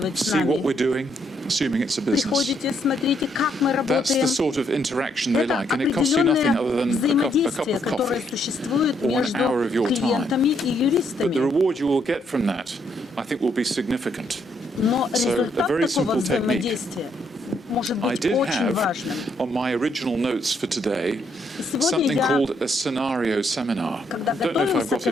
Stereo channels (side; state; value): both; normal; correlation 0.73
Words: с See what нами. we're doing, assuming it's a business. Приходите, смотрите, как мы That's работаем. the sort of interaction they Это like, and it costs you nothing other определенное than a cup взаимодействие, of которое coffee. существует or an между hour of your time. клиентами и But the юристами. reward you will get from that, I think, will be significant. Но So, a результат very такого simple technique. взаимодействия может I быть did очень have важным. on my original notes for today И сегодня something я, called a scenario seminar. когда I don't know if I've готовился got к